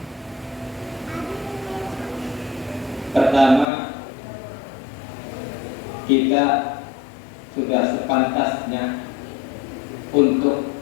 Pertama, kita sudah sepantasnya untuk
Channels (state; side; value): drops out; right; at 3.7 s